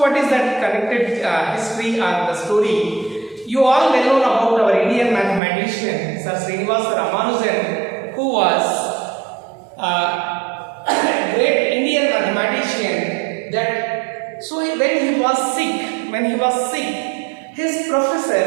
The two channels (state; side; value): drops out; left; at 5.4 s